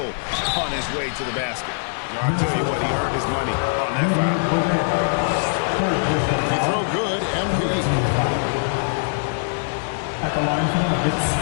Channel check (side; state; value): right; silent; digital silence